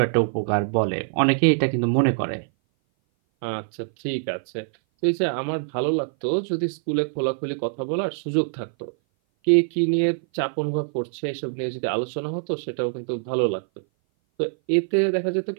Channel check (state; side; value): silent; left; 58 dB below the other